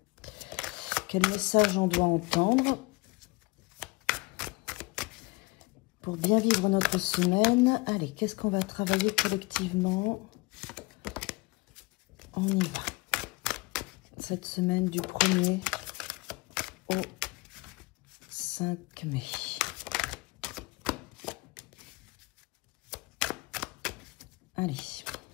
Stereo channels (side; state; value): right; quieter; 25.0 dB